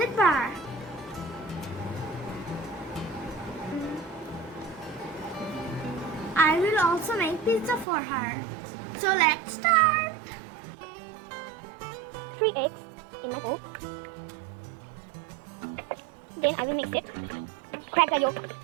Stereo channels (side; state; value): left; drops out; at 7.9 s